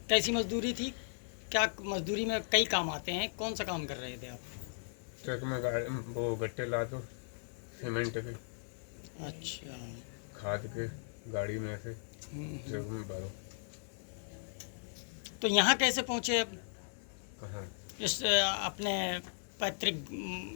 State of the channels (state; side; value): silent; right; 53 dB below the other